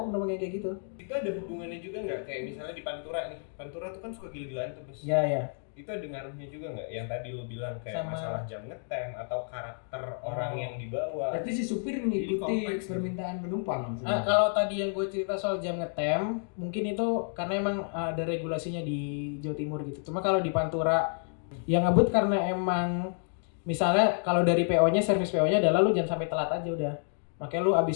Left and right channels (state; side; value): silent; right; 58 dB below the other